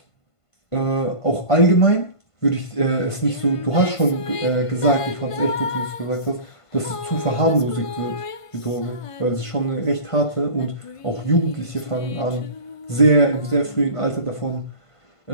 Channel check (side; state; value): right; late; 1.5 ms